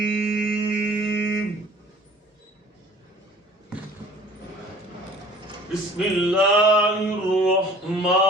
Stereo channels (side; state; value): both; normal; correlation 0.48